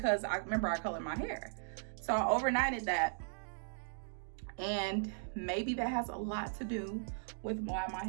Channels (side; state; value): left; silent; digital silence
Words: I remember I colored my hair. So I overnighted that, and maybe that has a lot to do with why my